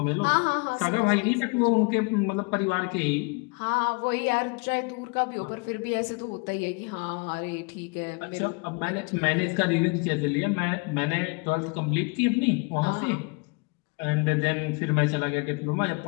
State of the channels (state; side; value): quieter; right; 31.1 dB